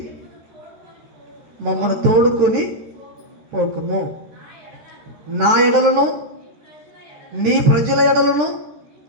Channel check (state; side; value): late; left; 13 ms